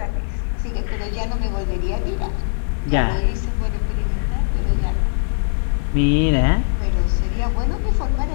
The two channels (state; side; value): silent; right; 65 dB below the other